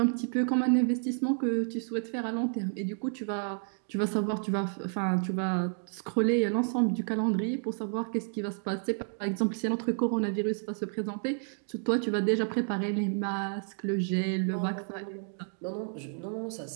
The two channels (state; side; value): silent; left; 57 dB below the other